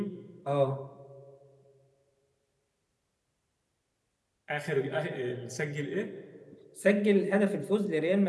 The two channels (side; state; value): both; identical; correlation 1.00